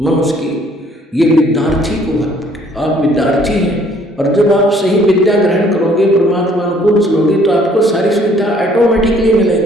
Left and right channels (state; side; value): normal; both; correlation 0.60